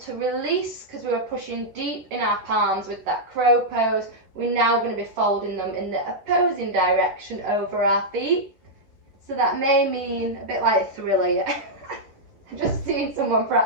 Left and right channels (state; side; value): late; left; 11 ms